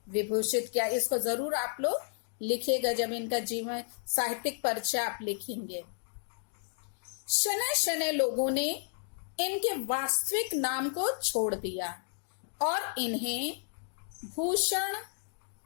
विभूषित किया। इसको जरूर आप लोग लिखिएगा जब इनका जीवन साहित्यिक परिचय आप लिखेंगे। शनै शनै लोगों ने इनके वास्तविक नाम को छोड़ दिया और इन्हें भूषण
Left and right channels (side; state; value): right; silent; digital silence